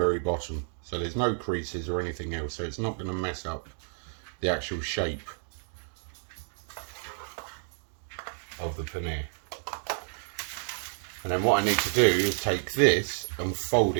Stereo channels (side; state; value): left; silent; 58 dB below the other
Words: bottom. So there's no creases or anything else, so it's not going to mess up the actual shape of the paneer. And then what I need to do is take this and fold